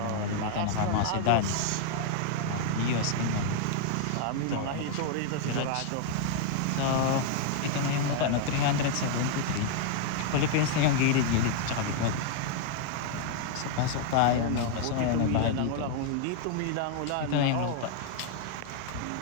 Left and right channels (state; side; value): different; both; correlation 0.00